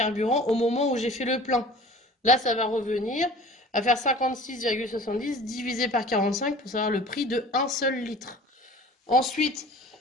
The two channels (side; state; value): both; normal; correlation 0.44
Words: au moment où j'ai fait le plein? Là, ça va revenir à faire 56,70 divisé par 45 pour savoir le prix de un seul litre. Ensuite,